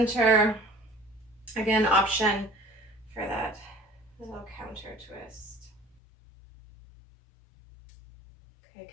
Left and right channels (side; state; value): right; drops out; at 6.0 s